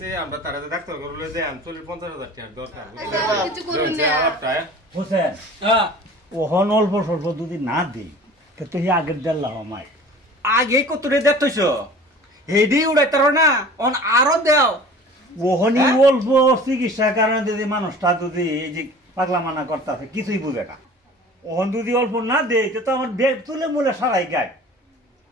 আমরা তারা ডাক্তার করলে যে 50,000 টাকা দরকার কিছু করুন না হোসেন হ্যাঁ ওহন অল্প স্বল্প যদি না দিই তো হি আগের দেল্লা আমায় আগে কতরে দেখতেছো হেডি উড়াইতার না অন আরো দেও ওহনি অল্প চিকিৎসার কারণে যদি মানুষটা যদি এই যে পাগলা মানা করতেছে কিছুই বুঝে না ওহন যদি অল্প না দেয় তো আমার বেগ তুলে মুলে সারাই গায়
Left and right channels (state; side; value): normal; both; correlation 0.43